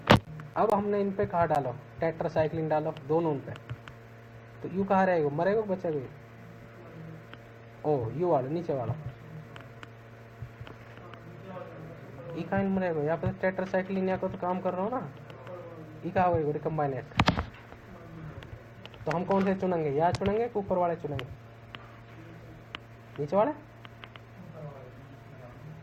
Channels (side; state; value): both; identical; correlation 1.00